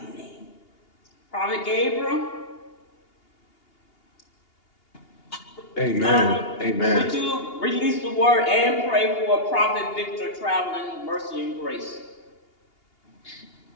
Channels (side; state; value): right; late; 2.8 ms